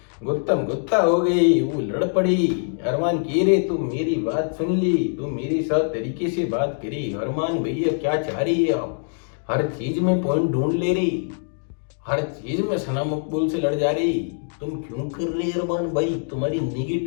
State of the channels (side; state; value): right; silent; digital silence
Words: गुत्तम गुत्ता हो गई, वो लड़ पड़ी। अरमान कह रहे तुम मेरी बात सुन ली, तुम मेरे साथ तरीके से बात करी। अरमान भैया क्या चाह रही है आप, हर चीज में पॉइंट ढूंढ ले रही, हर चीज में सना मकबूल से लड़ जा रही, तुम क्यों कर रहे अरमान भाई, तुम्हारी